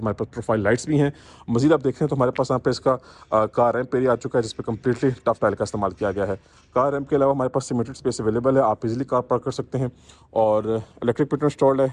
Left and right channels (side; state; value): both; identical; correlation 1.00